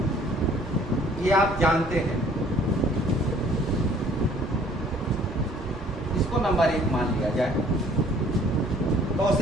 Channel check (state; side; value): normal; both; correlation 0.56